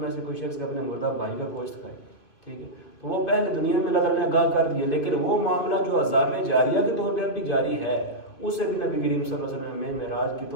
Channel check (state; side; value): late; right; 2.6 ms